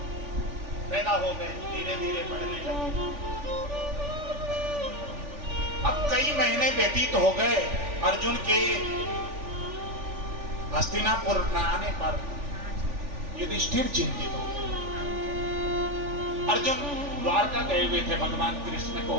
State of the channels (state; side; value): late; left; 3.4 ms